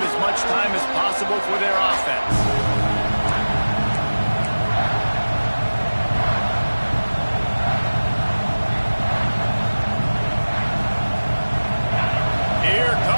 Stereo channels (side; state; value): both; inverted; correlation -1.00